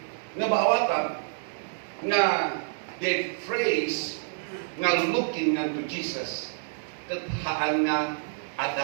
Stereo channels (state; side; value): silent; left; digital silence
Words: Nga baawatan nga the phrase nga looking unto Jesus, kat haan nga